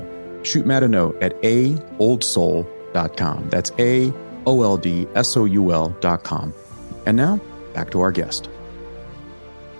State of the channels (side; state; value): both; inverted; correlation -1.00